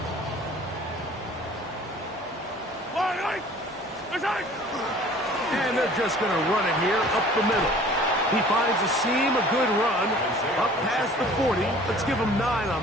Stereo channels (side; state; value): both; normal; correlation 0.49